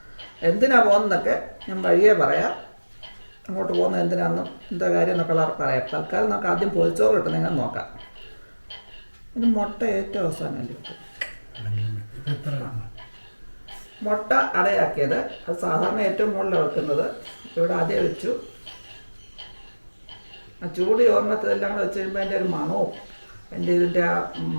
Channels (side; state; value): both; inverted; correlation -1.00